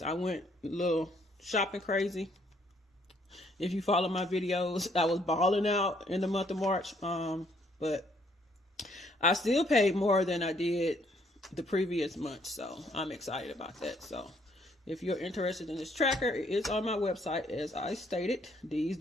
I went a little shopping crazy, if you follow my videos, I was balling out in the month of March. But I still paid more than I did the previous month, so I'm excited about that. So if you're interested in this tracker, it is on my website, as I stated, D's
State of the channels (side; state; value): both; normal; correlation 0.67